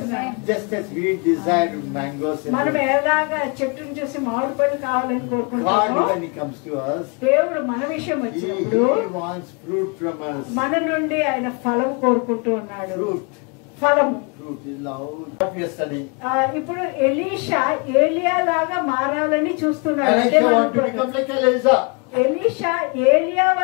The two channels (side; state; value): right; quieter; 32.8 dB